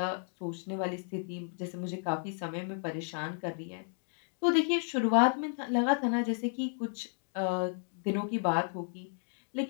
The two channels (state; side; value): silent; right; digital silence